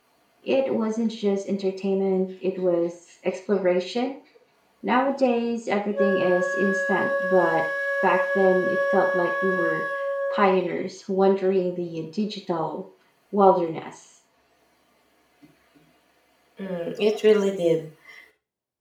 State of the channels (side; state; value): both; identical; correlation 1.00